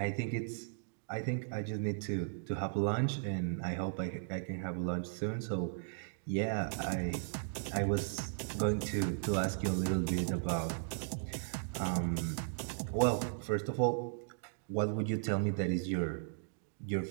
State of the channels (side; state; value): left; silent; digital silence